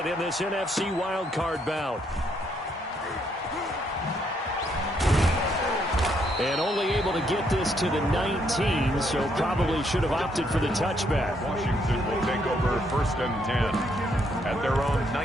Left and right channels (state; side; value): normal; both; correlation 0.73